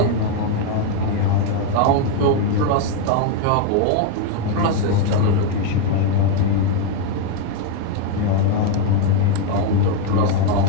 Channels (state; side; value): different; both; correlation 0.01